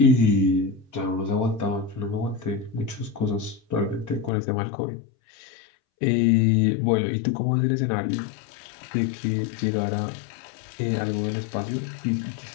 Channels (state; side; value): drops out; right; at 4.3 s